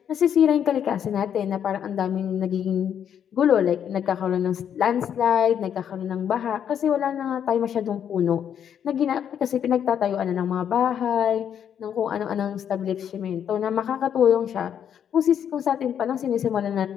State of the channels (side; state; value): right; quieter; 8.8 dB